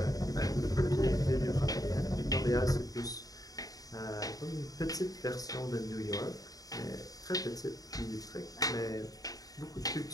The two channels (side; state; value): right; late; 0.18 ms